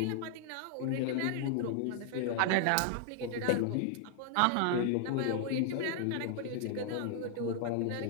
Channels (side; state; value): both; different; correlation -0.01